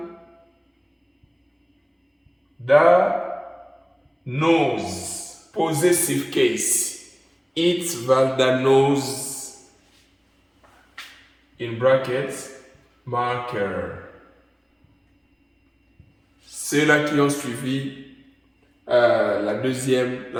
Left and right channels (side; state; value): both; identical; correlation 1.00